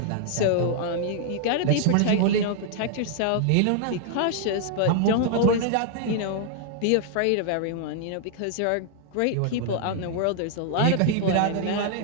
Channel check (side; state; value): both; different; correlation 0.00